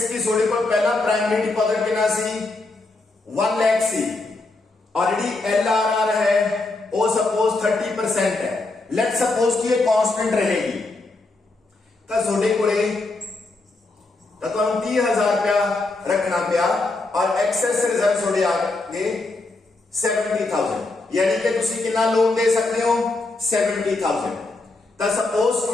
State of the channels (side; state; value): right; quieter; 3.3 dB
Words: की थोड़े को पहला प्राइमरी डिपॉजिट कितना सी 1 लाख सी, ऑलरेडी LRR है वो सपोज 30% है, लेट सपोज कि ये कांस्टेंट रहेगी तो थोड़े को 30,000 रुपया रखना पिया और एक्सेस रिजर्व थोड़े आगे 70,000, यानी कि तुसी कितना लोन दे सकते हो 70,000। तो सपोज